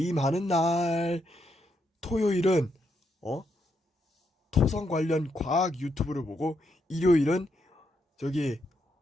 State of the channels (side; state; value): both; normal; correlation 0.79